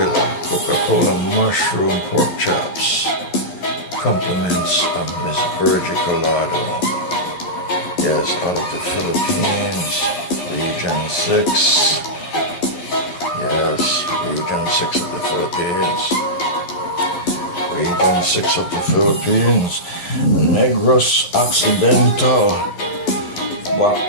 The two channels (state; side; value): late; right; 11 ms